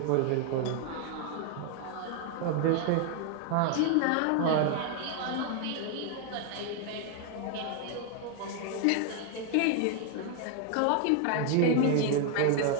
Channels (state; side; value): different; both; correlation 0.00